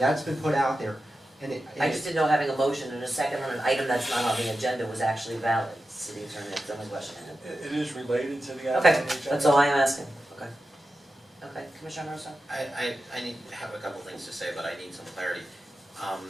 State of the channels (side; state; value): both; normal; correlation 0.92